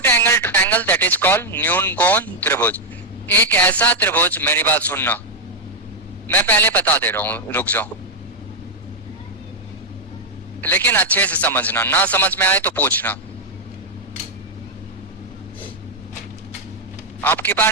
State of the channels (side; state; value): both; normal; correlation 0.00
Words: angle triangle that is called न्यून कोण त्रिभुज। एक ऐसा त्रिभुज, मेरी बात सुनना, मैं पहले बता दे रहा हूं, रुक जाओ, लेकिन अच्छे से समझना, ना समझ में आए तो पूछना। आपके पास